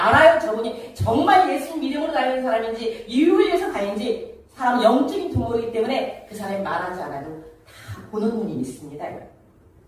저분이 정말 예수님 믿음으로 다니는 사람인지 이익을 위해서 다니는지 사람은 영적인 두모이기 때문에 그 사람이 말하지 않아도 다 보는 눈이 있습니다.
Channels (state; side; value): identical; both; correlation 1.00